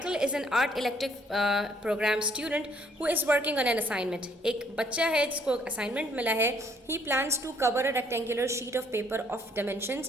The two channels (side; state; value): both; normal; correlation 0.64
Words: is an art elective programme student who is working on an assignment. एक बच्चा है जिसको असाइनमेंट मिला है। He plans to cover a rectangular sheet of paper of